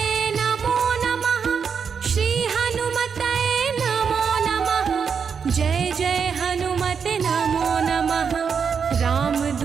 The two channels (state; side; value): quieter; left; 6.4 dB